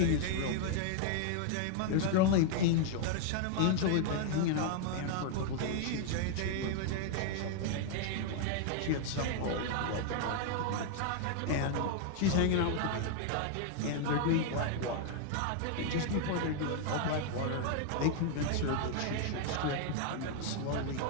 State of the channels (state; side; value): different; both; correlation 0.00